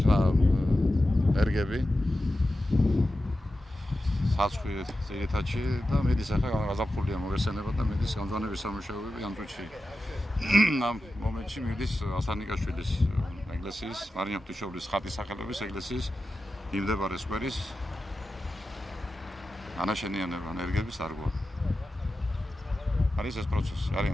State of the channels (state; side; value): normal; both; correlation 0.92